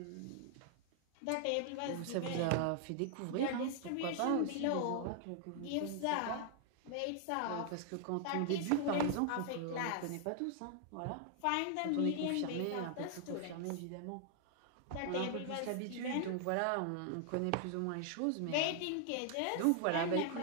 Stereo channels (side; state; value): both; different; correlation 0.00